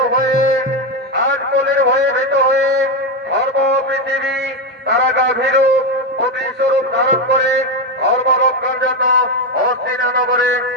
হয়ে ধর্ম পৃথিবী তারা গাভীর প্রতিস্বরূপ ধারণ করে ধর্ম রক্ষার জন্য হস্তিনা নগরে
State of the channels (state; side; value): normal; both; correlation 0.10